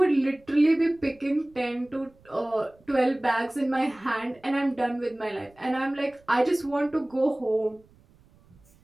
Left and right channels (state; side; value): noise; right; rumble, 30 dB below the sound